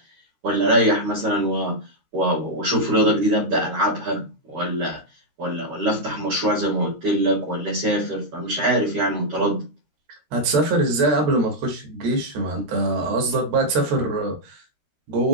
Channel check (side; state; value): left; late; 13 ms